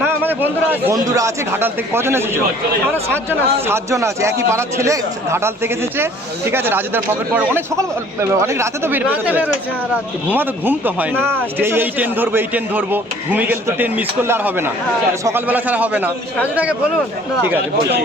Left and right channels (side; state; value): both; normal; correlation 0.54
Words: না, আমাদের বন্ধুরা আছে ঘাটাল থেকে। কজন এসেছে? আমরা 7 জন আছি। 7 জন আছে, একই পাড়ার ছেলে ঘাটাল থেকে এসেছে। ঠিক আছে, রাজুদার পকেট পড়ে অনেক সকাল, অনেক রাতে তো রাতে বের হয়েছে। ঘুম তো হয় না, না, এই ট্রেন ধরবো এই ট্রেন ধরবো, ঘুমিয়ে গেলে তো ট্রেন মিস করলে আর হবে না, সকালবেলা ছাড়া হবে না। রাজুদাকে বলুন। ঠিক আছে,